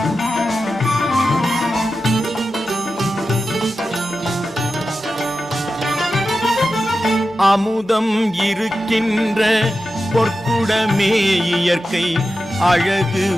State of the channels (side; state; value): both; normal; correlation 0.92